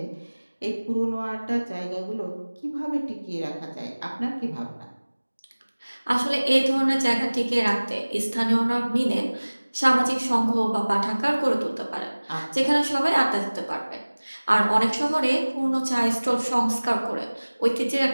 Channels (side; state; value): both; inverted; correlation -1.00